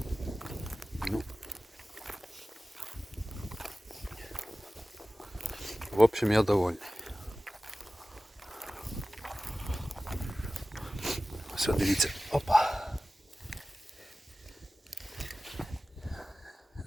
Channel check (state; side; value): normal; both; correlation 0.97